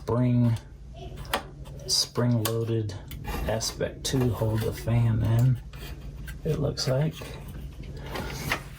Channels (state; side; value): identical; both; correlation 1.00